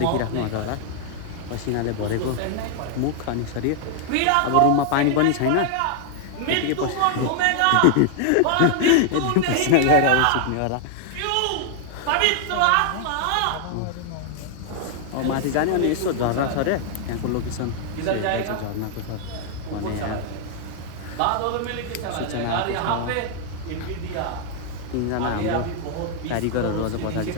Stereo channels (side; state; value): both; different; correlation 0.00